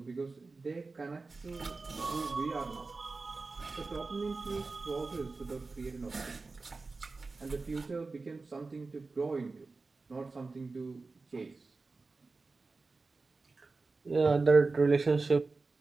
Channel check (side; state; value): left; quieter; 3.8 dB